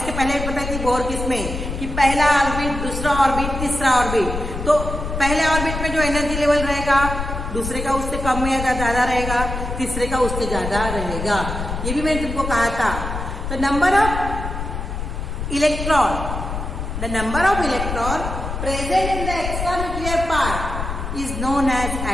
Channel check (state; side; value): noise; left; rumble, 5 dB below the sound